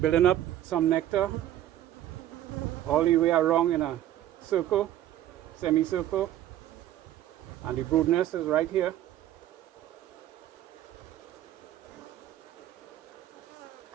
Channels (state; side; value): quieter; left; 12.6 dB